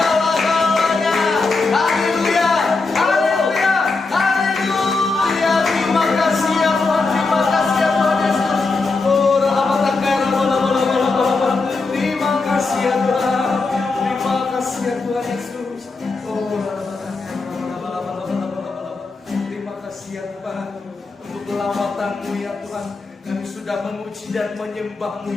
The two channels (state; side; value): quieter; right; 3.8 dB